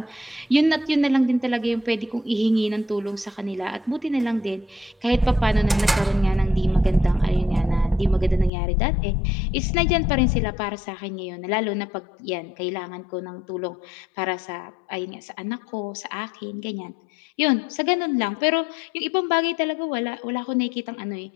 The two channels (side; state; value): right; drops out; at 8.5 s